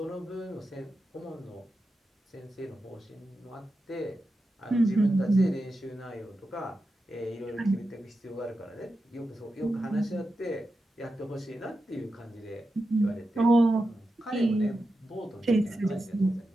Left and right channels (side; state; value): both; normal; correlation 0.90